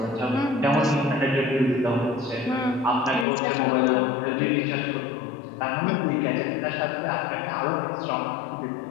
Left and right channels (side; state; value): right; drops out; at 3.2 s